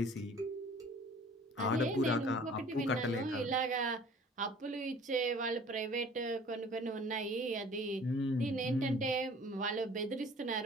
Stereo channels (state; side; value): normal; both; correlation 0.50